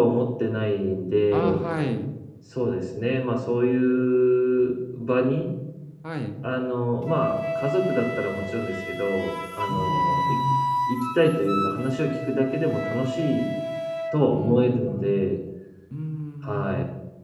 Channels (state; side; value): identical; both; correlation 1.00